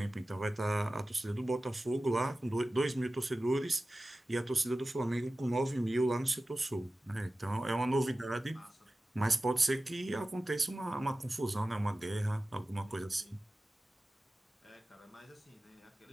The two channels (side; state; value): both; normal; correlation 0.95